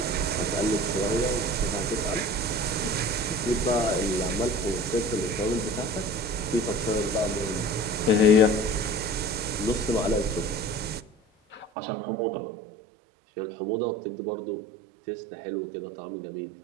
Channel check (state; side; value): drops out; left; at 11.7 s